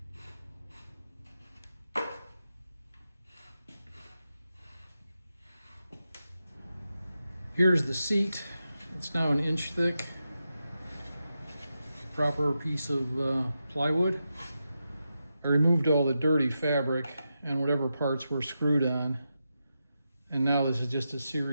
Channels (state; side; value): inverted; both; correlation -0.88